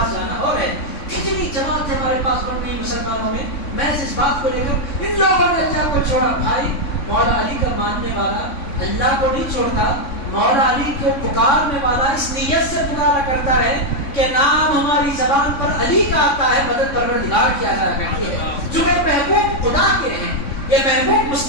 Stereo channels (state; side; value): late; right; 3.5 ms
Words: جانا اور ہے. کتنی جماعت ہمارے پاس بن گئی مسلمانوں میں. میں اس بات کو لے کر ان لوگوں نے اللہ کو چھوڑا. بھائی مولا علی کا ماننے والا اللہ کو نہیں چھوڑتا، مولا علی کو پکارنے والا اس نیت سے پکارا کرتا ہے کہ نام ہماری زبان پر علی کا آتا ہے، مدد پروردگار کیا جایا کرتی ہے. چونکہ محبوب خدا کے ہیں، یہ محبوب